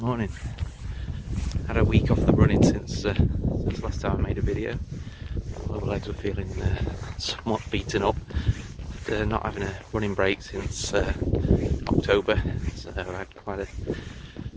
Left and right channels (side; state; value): both; identical; correlation 1.00